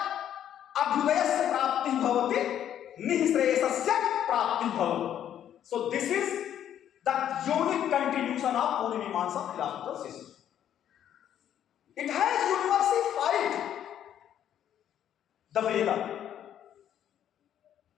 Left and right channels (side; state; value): right; quieter; 10.3 dB